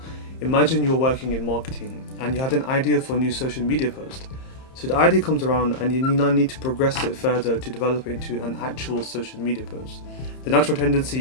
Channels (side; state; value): right; late; 30 ms